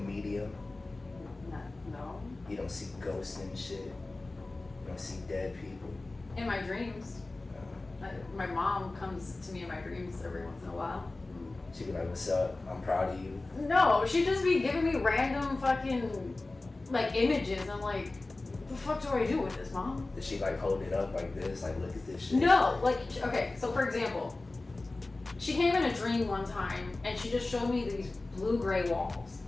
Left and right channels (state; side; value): quieter; right; 3.1 dB